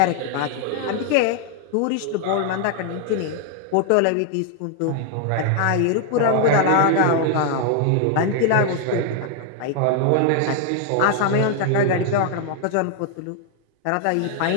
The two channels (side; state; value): both; different; correlation 0.00